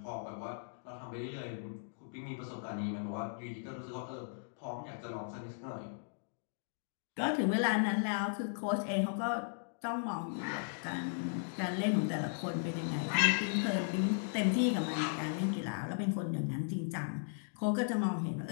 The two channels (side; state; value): right; silent; digital silence